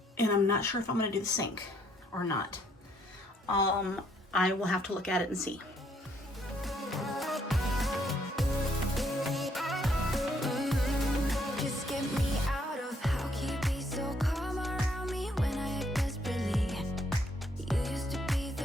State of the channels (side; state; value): both; normal; correlation 0.69